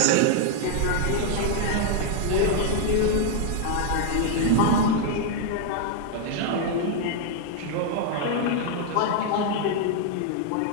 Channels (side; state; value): both; different; correlation 0.00